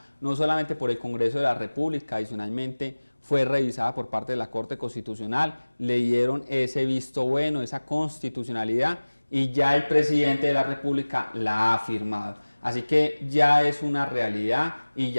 no solamente por el Congreso de la República, adicionalmente fue revisada por parte de la Corte Constitucional, le dieron ese visto bueno, esa constitucionalidad, y ya el presidente de la República la ha firmado. Así que ya es una realidad y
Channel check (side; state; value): both; inverted; correlation -1.00